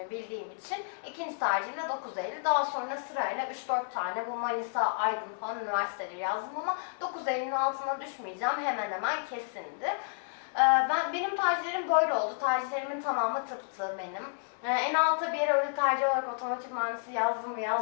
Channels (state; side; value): silent; right; digital silence